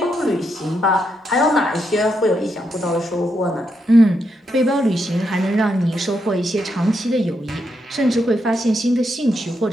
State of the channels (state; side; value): normal; both; correlation 0.81